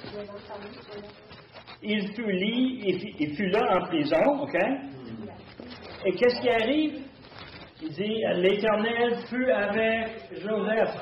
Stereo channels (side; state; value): both; identical; correlation 1.00